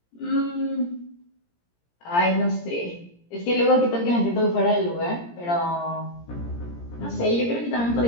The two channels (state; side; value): late; right; 17 ms